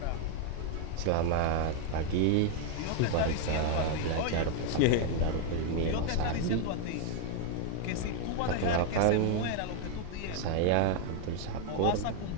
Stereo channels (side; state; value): both; different; correlation 0.00